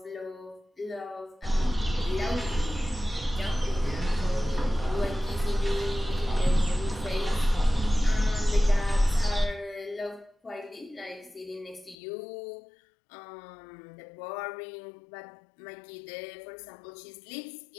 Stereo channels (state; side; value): drops out; right; at 12.0 s